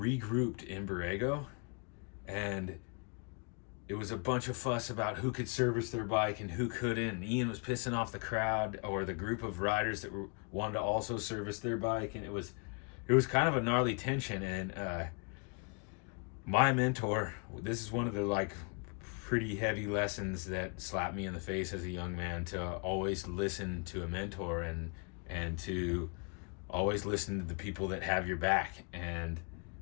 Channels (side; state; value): right; quieter; 37.0 dB